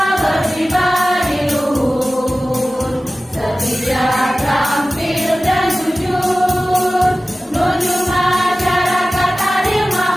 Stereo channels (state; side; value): normal; both; correlation 0.96